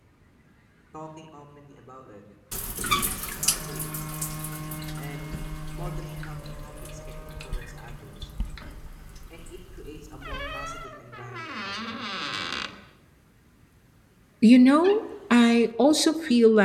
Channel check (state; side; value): identical; both; correlation 1.00